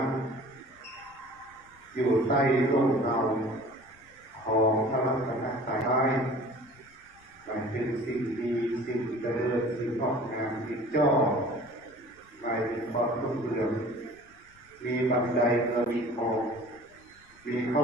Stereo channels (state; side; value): noise; left; rumble, 29 dB below the sound